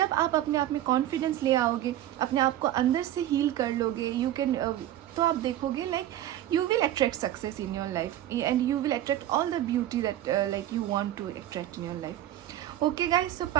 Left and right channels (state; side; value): quieter; left; 12.9 dB